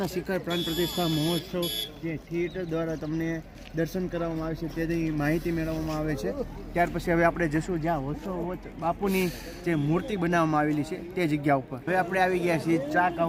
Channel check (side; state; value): both; identical; correlation 1.00